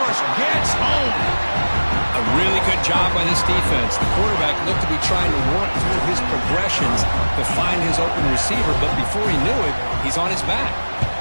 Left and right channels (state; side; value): inverted; both; correlation -1.00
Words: rush gets home. A really good job by this defense. The quarterback looked to be trying to work through his progressions to find his open receiver, but before he knew it, he's on his back.